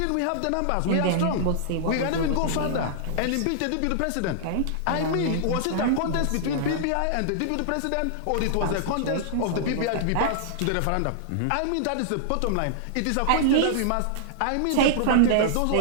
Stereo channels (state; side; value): different; both; correlation -0.01